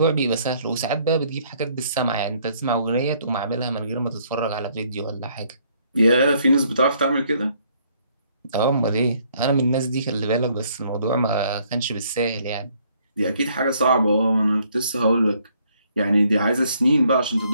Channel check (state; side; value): inverted; both; correlation -0.66